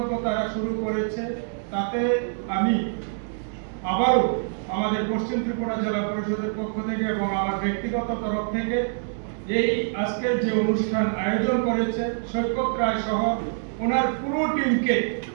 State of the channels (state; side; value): silent; left; digital silence